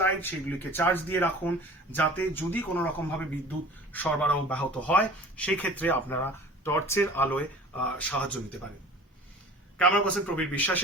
লাইট সেগুলিকে চার্জ দিয়ে রাখুন, যাতে যদি কোনো রকম ভাবে বিদ্যুৎ সরবরাহ ব্যাহত হয় সেই ক্ষেত্রে আপনারা টর্চের আলোয় সাহায্য নিতে পারেন। ক্যামেরা পার্সন প্রবীর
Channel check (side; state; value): both; normal; correlation 0.43